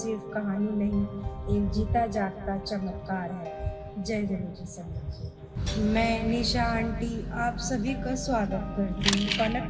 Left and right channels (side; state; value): both; identical; correlation 1.00